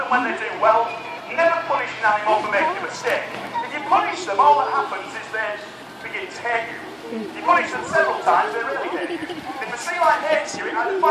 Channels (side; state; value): both; identical; correlation 1.00